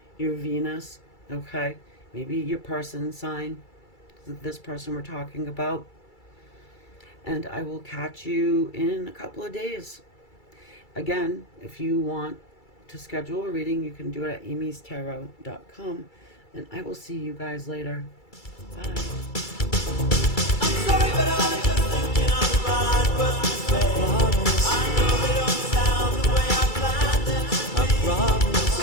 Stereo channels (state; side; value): late; right; 2.3 ms